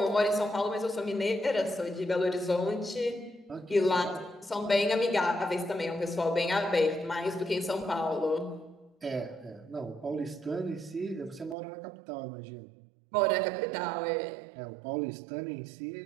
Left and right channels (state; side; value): drops out; left; at 11.6 s